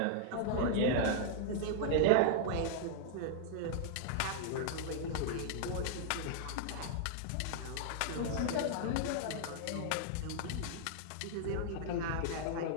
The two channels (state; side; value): different; both; correlation -0.01